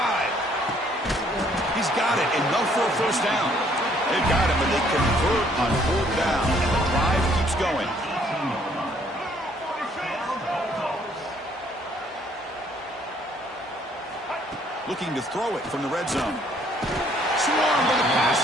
He's got it, enough for a first down. They've got it, but they convert on fourth down, and the drive keeps going. Looking to throw it from the red zone. Swarmed by the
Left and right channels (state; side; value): normal; both; correlation 0.64